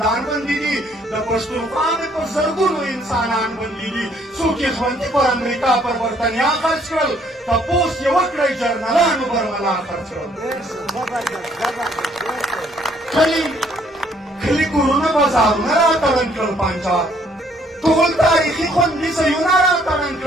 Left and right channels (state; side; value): normal; both; correlation 0.65